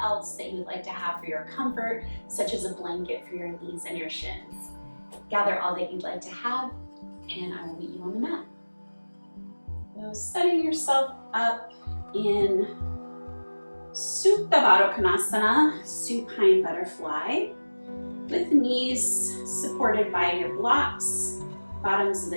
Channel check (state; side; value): inverted; both; correlation -1.00